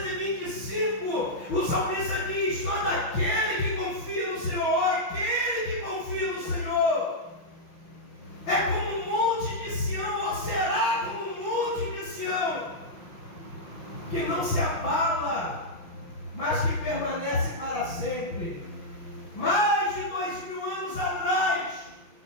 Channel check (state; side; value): late; right; 6.0 ms